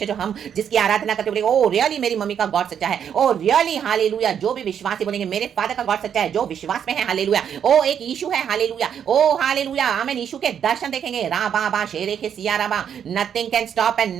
जो हम जिसकी आराधना करते बोलेंगे ओ रियली मेरी मम्मी का गॉड सच्चा है, ओ रियली हालेलुया। जो भी विश्वासी बोलेंगे मेरे फादर का गॉड सच्चा है, जो विश्वास में है हालेलुया। ओ एक यीशु है हालेलुया, ओ हालेलुया आमीन। यीशु के दर्शन देखेंगे रा बा बा शेरे के सिया रा बा। Nothing can stop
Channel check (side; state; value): left; quieter; 8.4 dB